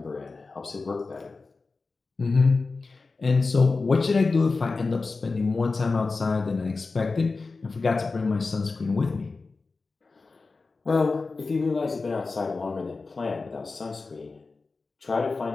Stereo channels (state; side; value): quieter; right; 4.0 dB